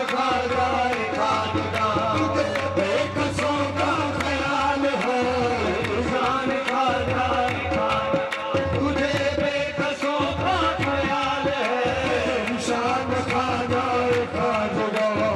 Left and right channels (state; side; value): identical; both; correlation 1.00